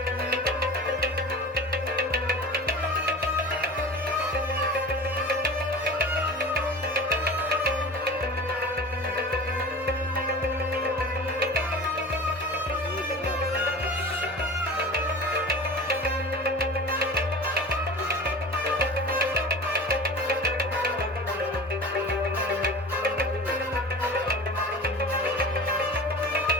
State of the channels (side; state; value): both; normal; correlation 0.36